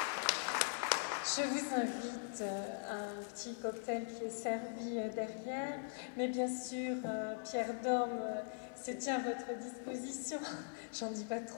Je vous invite à un petit cocktail qui est servi derrière, mais bien sûr, Pierre Dorme se tient à votre disposition, j'en dis pas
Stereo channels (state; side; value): silent; right; 50 dB below the other